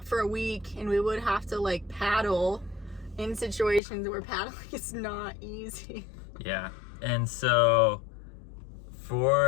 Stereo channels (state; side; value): drops out; right; at 3.8 s